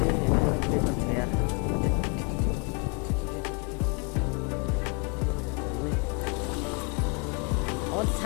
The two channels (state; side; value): quieter; right; 33.4 dB